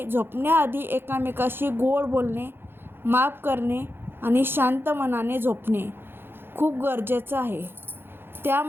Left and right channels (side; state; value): left; late; 0.10 ms